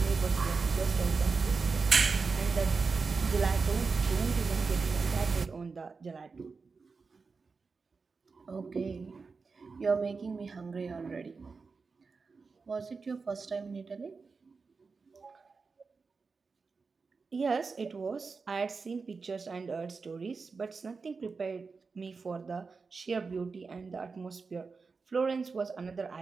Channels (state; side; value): quieter; left; 4.6 dB